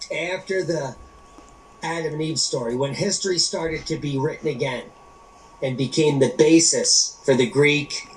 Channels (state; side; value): identical; both; correlation 1.00